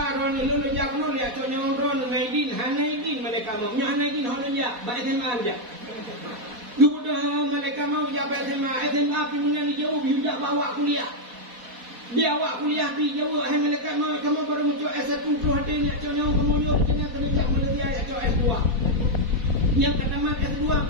ron lu jak nu lihat contohnya ron naidin hanaidin mereka mau. Nya hanaidin holon jak ba SMA aja. Duda mereka mau jak SMA pi punya ni jauh biudak bawa kuliah. Dia awak kuliah pi jauh hai mereka mau kamu baru muncul S1 pro hati ni contohnya kamu yo kena jak melati ayat S2. Yang kata mat S2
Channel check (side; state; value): left; late; 4.1 ms